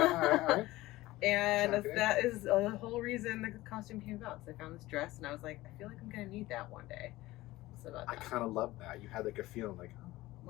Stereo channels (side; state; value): right; quieter; 18.0 dB